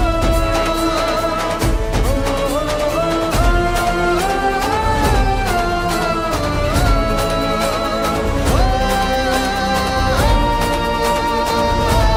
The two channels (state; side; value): identical; both; correlation 1.00